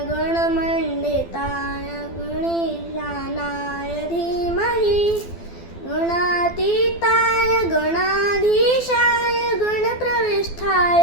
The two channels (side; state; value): right; late; 12 ms